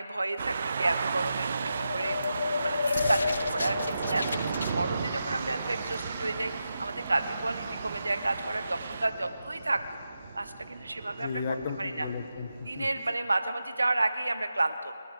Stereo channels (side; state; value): both; inverted; correlation -0.88